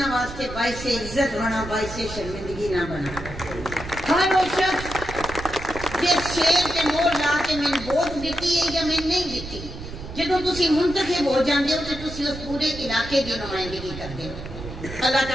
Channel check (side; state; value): right; noise; rumble, 11 dB below the sound